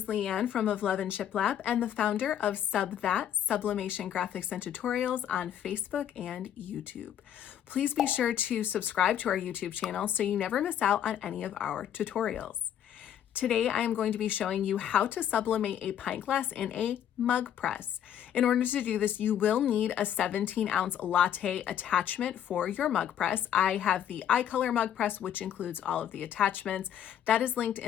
Leanne from Of Love and Shiplap and the founder of Sublimation graphics and tutorials on Facebook and YouTube. Please be sure to subscribe to our YouTube channel so you never miss out on any of our tutorials. Today, I am going to be showing you how to sublimate a pint glass in a mug press. In order to do this, you will need a 17-ounce latte attachment for your mug press. I have the iColor mug press, which includes all of the attachments. That is linked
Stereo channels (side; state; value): right; quieter; 10.0 dB